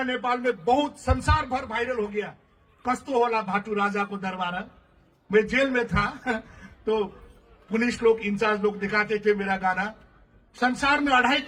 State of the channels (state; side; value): identical; both; correlation 1.00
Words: नेपाल में बहुत संसार भर वायरल हो गया, कस्तो होला भाटू राजा को दरबारा। मैं जेल में था तो पुलिस लोग, इंचार्ज लोग दिखाते थे मेरा गाना। संसार में 2.5